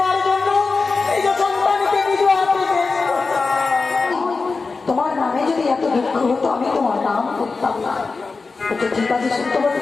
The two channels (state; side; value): quieter; right; 4.2 dB